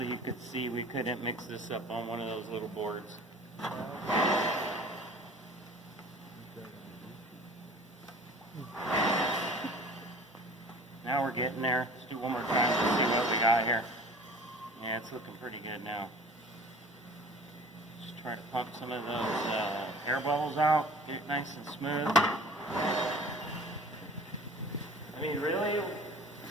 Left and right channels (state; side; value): normal; both; correlation 0.44